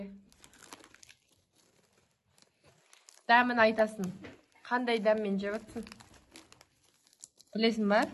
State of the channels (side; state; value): both; identical; correlation 1.00